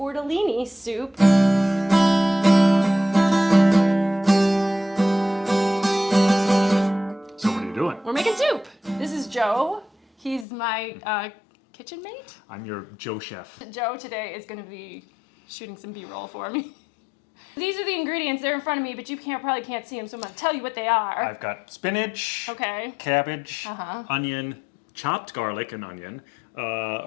soup. So what are you doing? We're making soup. This is Joe. He's my kitchen mate. I'm your Joe chef. Joe today is going to be shooting some B-roll for me. These are the ingredients. They're in front of me, but you probably can't see them, so I'm going to tell you what they are. I've got spinach, Okay. cabbage, onion, chopped garlic and onion,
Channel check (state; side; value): drops out; right; at 10.5 s